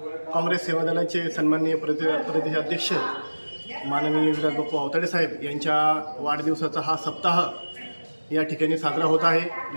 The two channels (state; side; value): inverted; both; correlation -1.00